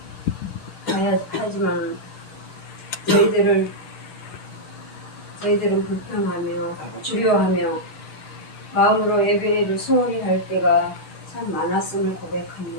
하지만 저희들은 불평하며 두려워하며 마음으로 예배를 소홀히 할 때가 참 많았음을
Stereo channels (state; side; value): late; right; 10 ms